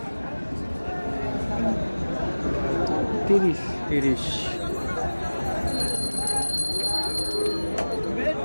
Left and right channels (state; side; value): inverted; both; correlation -1.00